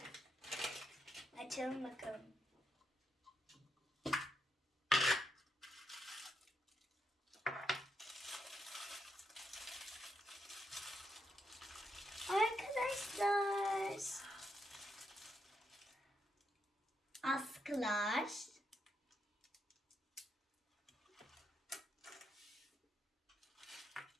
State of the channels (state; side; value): normal; both; correlation 0.81